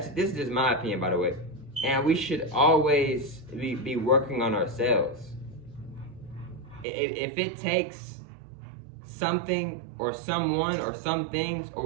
is just my opinion, by the way. And we should always be working on ourselves. If it takes something or someone or some things or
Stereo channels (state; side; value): drops out; left; at 6.9 s